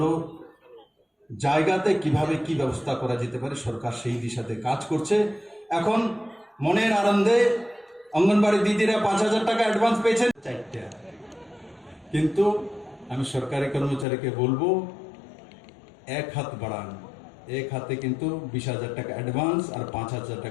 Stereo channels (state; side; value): drops out; right; at 14.1 s